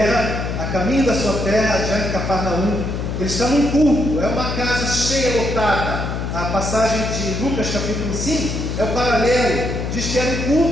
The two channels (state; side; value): noise; left; hum, 3 dB below the sound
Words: a caminho da sua terra, já em Cafarnaum, ele está num culto, é uma casa cheia, lotada. A passagem de Lucas capítulo 5 é o paralelo. Diz que era um